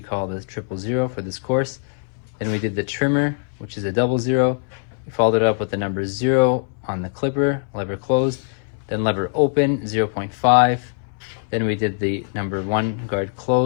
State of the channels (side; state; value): right; silent; 62 dB below the other